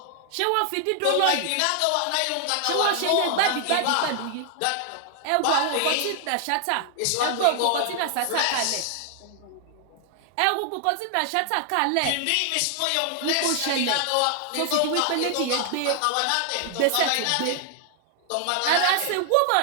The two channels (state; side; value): different; both; correlation 0.00